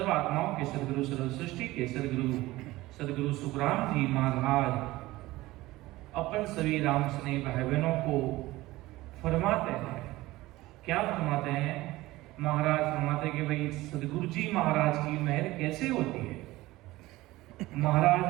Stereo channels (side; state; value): left; quieter; 18.4 dB